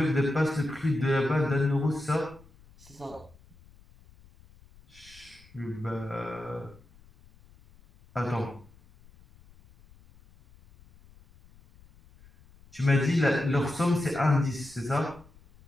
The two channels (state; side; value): noise; left; rumble, 26 dB below the sound